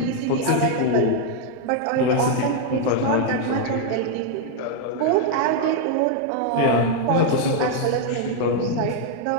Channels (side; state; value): both; different; correlation 0.00